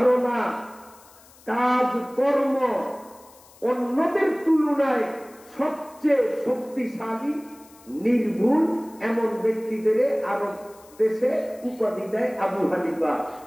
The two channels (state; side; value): noise; left; hiss, 25 dB below the sound